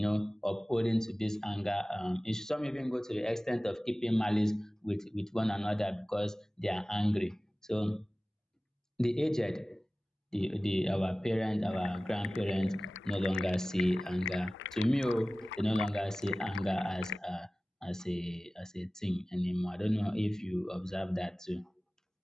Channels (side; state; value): both; normal; correlation 0.97